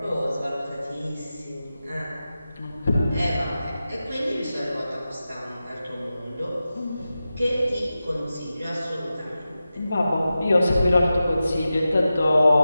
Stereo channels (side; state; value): both; inverted; correlation -0.93